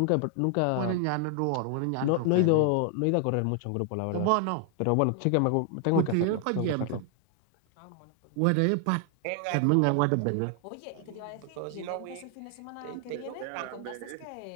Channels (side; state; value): both; different; correlation 0.00